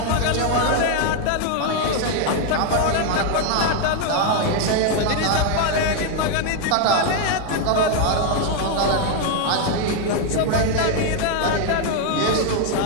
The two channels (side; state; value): both; different; correlation 0.00